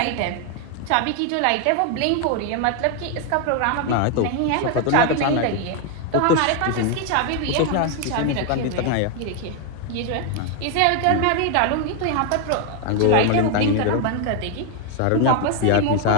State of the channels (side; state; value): both; different; correlation 0.01